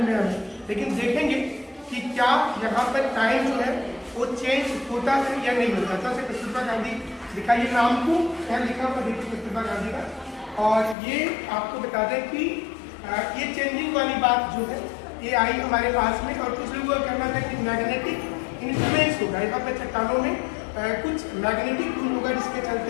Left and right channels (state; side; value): drops out; right; at 11.0 s